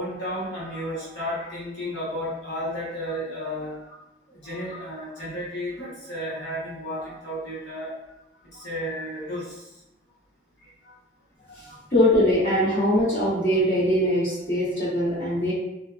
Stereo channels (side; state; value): both; normal; correlation 0.39